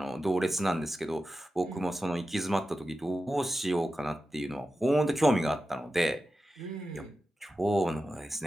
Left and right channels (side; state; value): both; normal; correlation 0.92